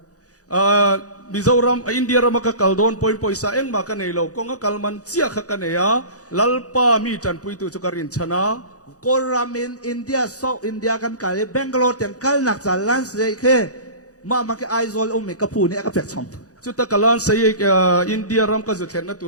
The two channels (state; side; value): late; right; 0.67 ms